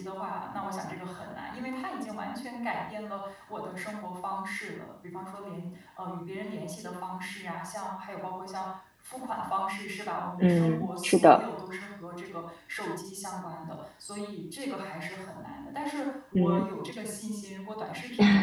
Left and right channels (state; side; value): identical; both; correlation 1.00